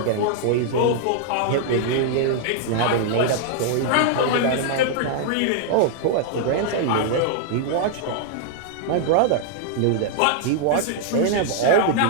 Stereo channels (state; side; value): different; both; correlation -0.01